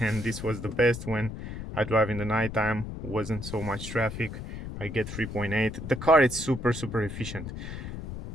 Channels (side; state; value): left; noise; rumble, 8 dB below the sound